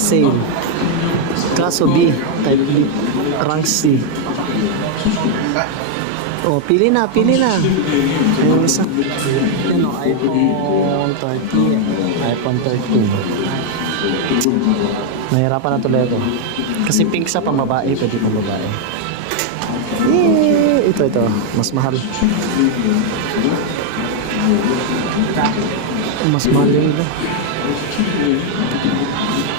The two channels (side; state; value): both; different; correlation 0.00